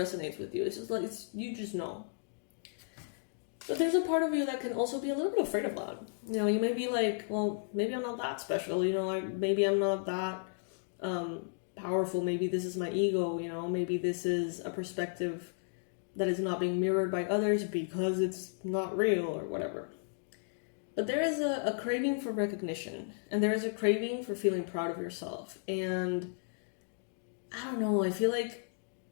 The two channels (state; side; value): silent; right; digital silence